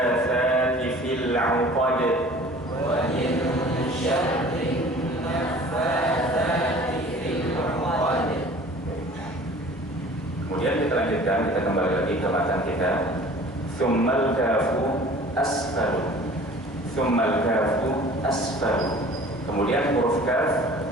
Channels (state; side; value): normal; both; correlation 0.46